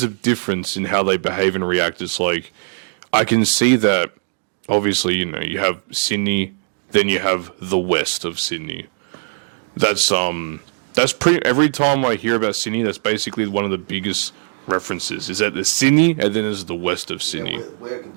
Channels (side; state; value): left; silent; digital silence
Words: a difference in how they behave and react. It's like I can see that obviously, you have Sydney, then you have the west of Sydney. That's pretty every time I hear about Sydney, that's basically one of the biggest references. Is that the Sydney and then there's the west of Sydney. Yeah, we're a